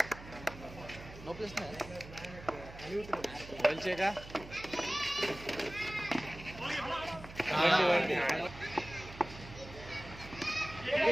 नो प्लस नाही बोलचे का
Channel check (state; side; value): noise; right; hum, 15 dB below the sound